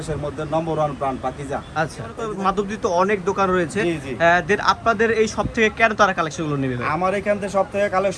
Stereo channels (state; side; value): identical; both; correlation 1.00